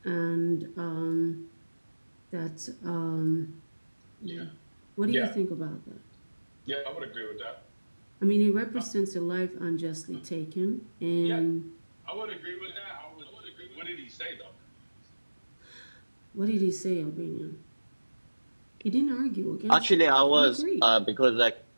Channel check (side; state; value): both; inverted; correlation -1.00